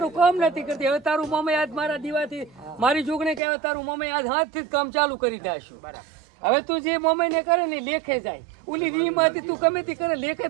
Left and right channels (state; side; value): drops out; left; at 3.4 s